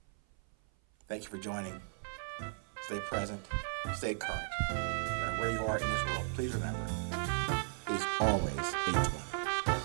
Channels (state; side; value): silent; left; 54 dB below the other